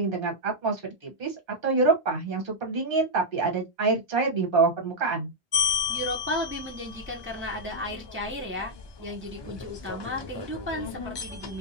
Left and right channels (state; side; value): normal; both; correlation -0.03